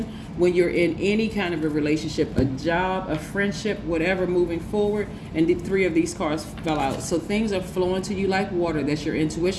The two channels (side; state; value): both; identical; correlation 1.00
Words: when you're in any kind of a relationship, a job, a friendship, whatever, moving forward. And the 3 of these cards fell out. So things are flowing to you like water. That's your